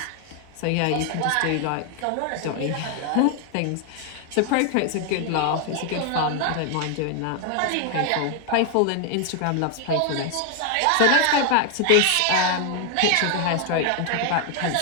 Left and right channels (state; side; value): different; both; correlation 0.00